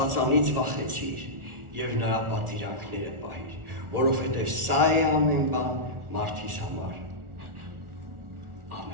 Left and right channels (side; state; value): left; late; 1.4 ms